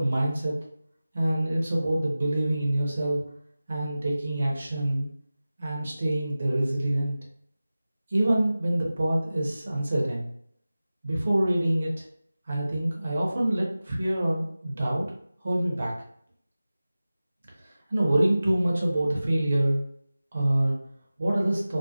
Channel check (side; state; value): both; inverted; correlation -0.96